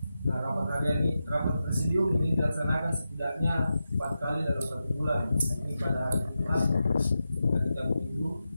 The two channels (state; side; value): inverted; both; correlation -0.90